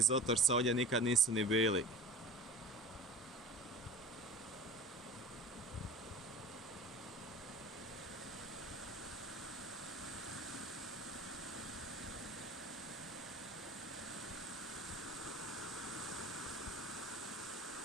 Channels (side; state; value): both; normal; correlation 0.39